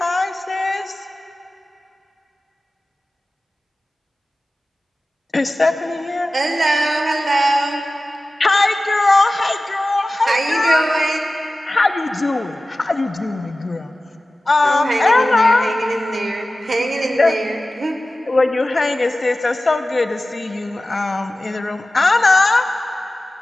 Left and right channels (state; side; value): normal; both; correlation 0.96